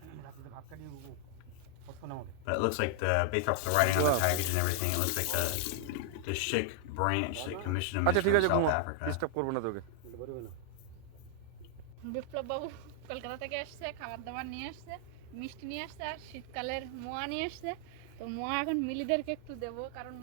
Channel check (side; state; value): both; different; correlation 0.00